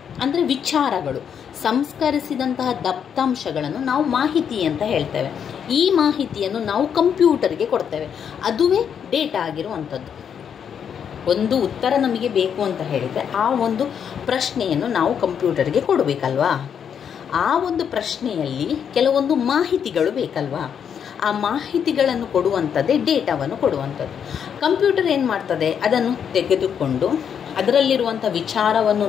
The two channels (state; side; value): quieter; right; 7.9 dB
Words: ಅಂದರೆ ವಿಚಾರಗಳು. ಸಂಸ್ಕರಿಸಿದಂತಹ ದತ್ತಾಂಶಗಳನ್ನು ನಾವು ಮಾಹಿತಿ ಅಂತ ಹೇಳ್ತೇವೆ. ಈ ಮಾಹಿತಿಯನ್ನು ನಾವು ಕಂಪ್ಯೂಟರ್ಗೆ ಕೊಡ್ತೇವೆ, ಅದುವೇ ಡೇಟಾ ಆಗಿರುವಂಥದ್ದು. ಒಂದು ಉತ್ತರ ನಮಗೆ ಬೇಕು ಅಂತ ಹೇಳಿದರೆ ಆ ಒಂದು ಪ್ರಶ್ನೆಯನ್ನು ನಾವು ಕಂಪ್ಯೂಟರ್ಗೆ ಕೊಡಬೇಕಲ್ವಾ? ಆ ಒಂದು ಪ್ರಶ್ನೆಯಲ್ಲಿ ಕೆಲವೊಂದು ಮಾಹಿತಿಗಳು ಬೇಕಲ್ವಾ? ಆ ಮಾಹಿತಿಗಳನ್ನು ಕೊಡುವಂಥದ್ದೇ ಡೇಟಾವನ್ನು ಕೊಡುವಂಥದ್ದು. ಕಂಪ್ಯೂಟರ್ ಏನು ಮಾಡ್ತದೆ? ಅದನ್ನು ತೆಗೆದುಕೊಂಡು ಅದರಲ್ಲಿರುವಂಥ ವಿಚಾರವನ್ನು